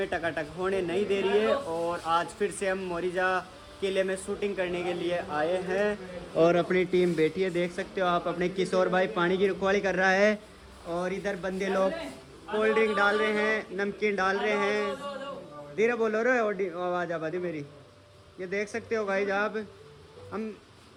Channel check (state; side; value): identical; both; correlation 1.00